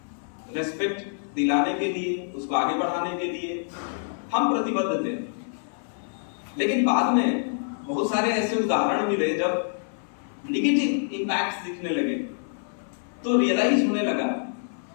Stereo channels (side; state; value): right; silent; 61 dB below the other